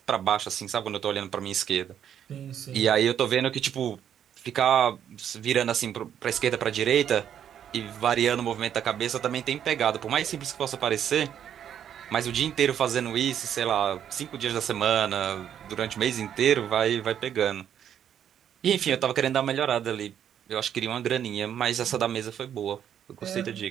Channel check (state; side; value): quieter; left; 9.4 dB